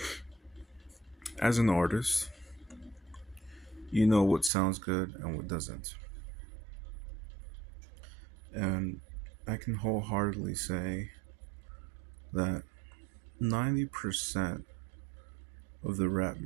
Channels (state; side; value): drops out; left; at 4.5 s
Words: As an artist, you know what sounds good and what doesn't. And I can wholeheartedly say that 90% of the rap